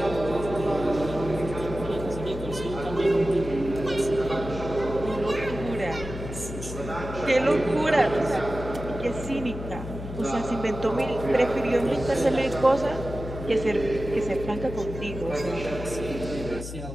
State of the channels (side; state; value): left; noise; hum, 9 dB below the sound